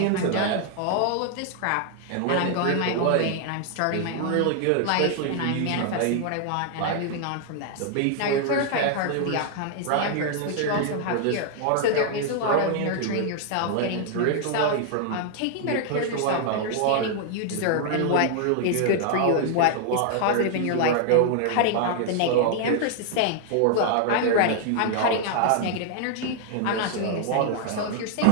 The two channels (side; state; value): both; different; correlation 0.00